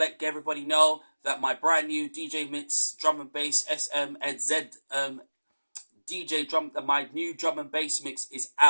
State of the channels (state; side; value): inverted; both; correlation -1.00